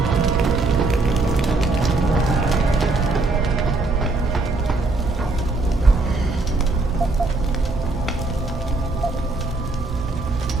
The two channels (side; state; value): left; quieter; 3.3 dB